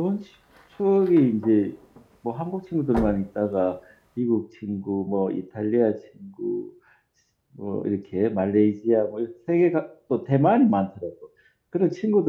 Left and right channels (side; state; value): both; identical; correlation 1.00